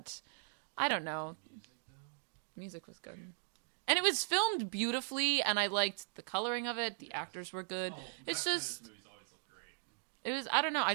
I don't know. The music, though? Music was good. Okay. And it was filmed beautifully, and I liked the coloring of it. The Yes. actors were good. Oh, well, It's Zack just- Snyder's movies always look great. It was, I don't know.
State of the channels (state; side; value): silent; left; digital silence